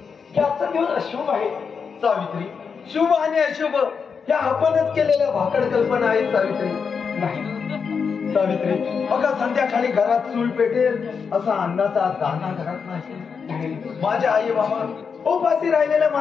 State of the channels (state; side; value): quieter; right; 5.9 dB